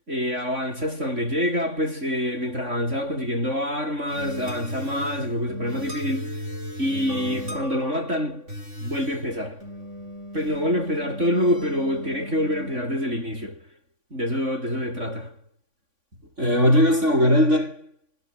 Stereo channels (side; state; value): left; late; 3.5 ms